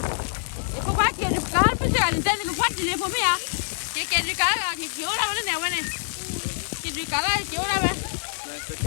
E po qua che il calpo si ha intende che fatti le pomia. Che di cara che ora va ne va ne. Che di cara che ora va.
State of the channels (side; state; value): right; silent; digital silence